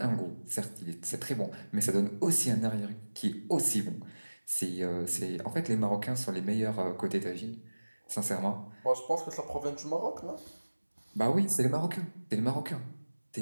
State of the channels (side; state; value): both; inverted; correlation -1.00